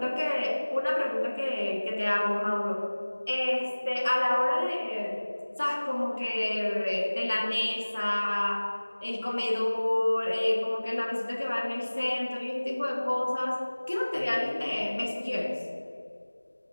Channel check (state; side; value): inverted; both; correlation -1.00